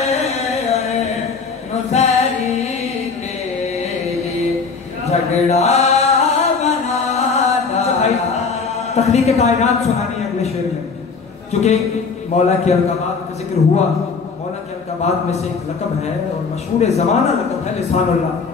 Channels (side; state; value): right; quieter; 5.0 dB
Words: नुसैरी के लिए, झगड़ा बना डाला। तख्लीक़ कायनात सुनानी है अगले शेर में, क्योंकि मौला की अलक़ाबात का जिक्र हुआ। मौला की अलक़ाबात में से एक लक़ब है और मशहूर ज़माना लक़ब है लिसानुल्लाह।